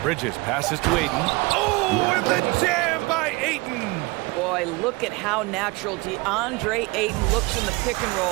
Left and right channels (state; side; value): quieter; left; 24.3 dB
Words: Bridges passes to Ayton. Oh, and the jam by Ayton. Boy, look at how natural DeAndre Ayton looks in the pick and